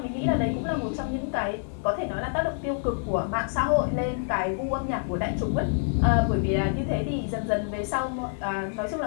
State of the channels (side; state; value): right; silent; digital silence